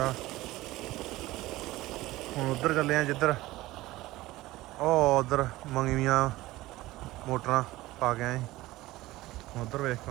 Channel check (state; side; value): quieter; left; 17.9 dB